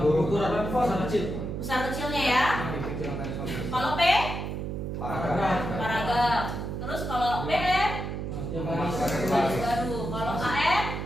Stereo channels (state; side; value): noise; right; hum, 4 dB below the sound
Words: ukuran besar kecil. Besar kecilnya ya. Kalau P, paragraf. Terus kalau BM, garis baru. Kalau AM,